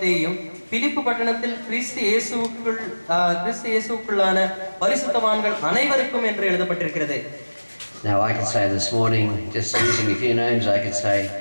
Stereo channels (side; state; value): both; inverted; correlation -1.00